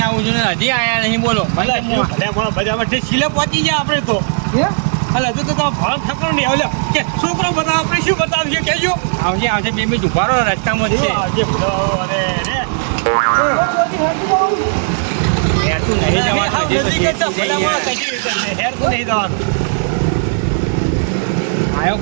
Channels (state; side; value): silent; left; 67 dB below the other